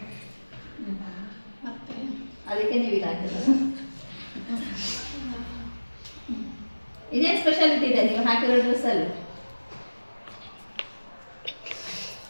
ಮತ್ತೆ ಅದಕ್ಕೆ ನೀವು ಈಗ ಹಾಕಿರೋದು. ಇದೇನು ಸ್ಪೆಷಾಲಿಟಿ ಇದೆ ನೀವು ಹಾಕಿರೋ ಡ್ರೆಸ್ಸಲ್ಲಿ?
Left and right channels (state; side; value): inverted; both; correlation -1.00